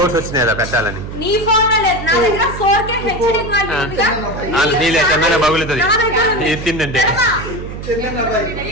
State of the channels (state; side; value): noise; right; hum, 9 dB below the sound